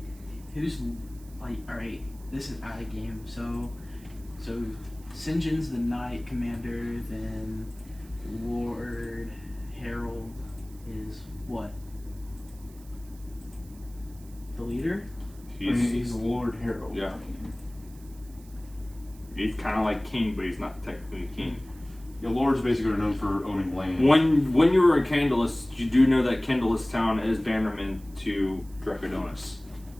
like? All right, this is out of game. So Sinjin's the Knight Commander. Then Lord Harold is what? The leader? He's Lord Harold. Yeah. He's kind of like king, but he's not technically king. Yeah, Lord's basically known for owning land. When you were a Candlelis, you do know that Candlelis town is bannerman to Dracodonis.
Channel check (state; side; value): noise; right; hiss, 24 dB below the sound